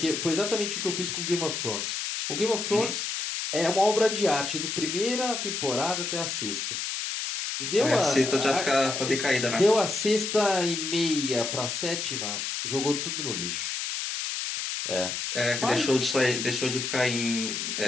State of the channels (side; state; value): left; noise; hiss, 3 dB below the sound